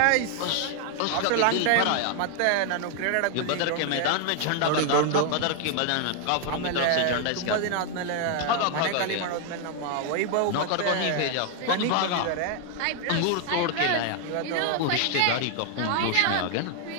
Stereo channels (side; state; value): both; different; correlation 0.00